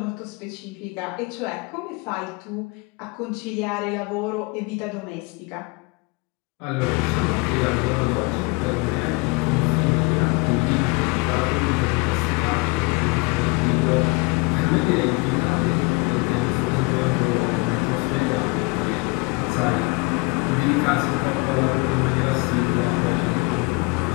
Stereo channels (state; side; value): quieter; right; 27.6 dB